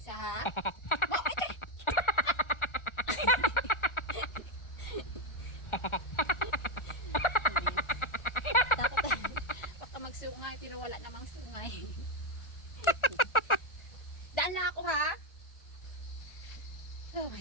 Isa ha? Takot. Baka magsungay pero wala namang sungay. Daan na ako ha? Oh my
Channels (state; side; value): late; right; 1.4 ms